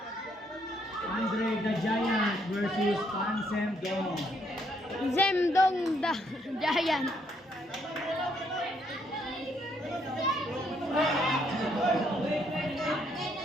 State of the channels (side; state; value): both; normal; correlation 0.71